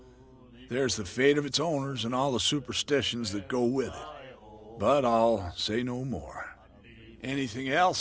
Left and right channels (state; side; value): identical; both; correlation 1.00